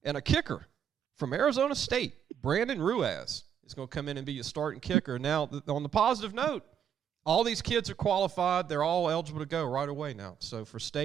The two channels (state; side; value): quieter; left; 8.8 dB